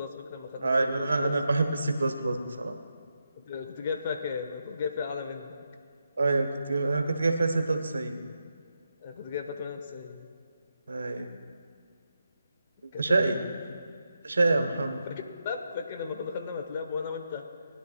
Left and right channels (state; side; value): inverted; both; correlation -0.85